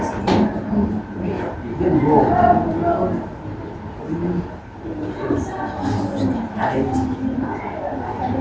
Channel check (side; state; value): both; identical; correlation 1.00